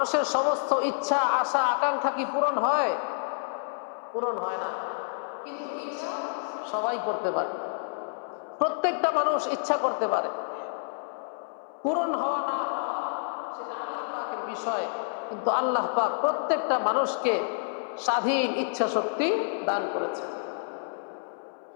সমস্ত ইচ্ছা, আশা, আকাঙ্ক্ষা কি পূরণ হয়? পূরণ হয় না। কিন্তু ইচ্ছা সবাই করতে পারে, প্রত্যেকটা মানুষ ইচ্ছা করতে পারে। পূরণ হওয়া না হওয়া সেটা আল্লাহ পাকের বিষয়, কিন্তু আল্লাহ পাক প্রত্যেকটা মানুষকে স্বাধীন ইচ্ছা শক্তি দান করেছেন।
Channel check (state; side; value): silent; right; 59 dB below the other